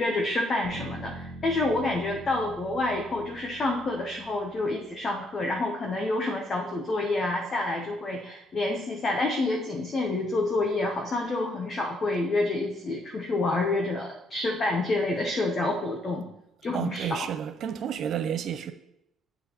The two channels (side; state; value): both; normal; correlation 0.71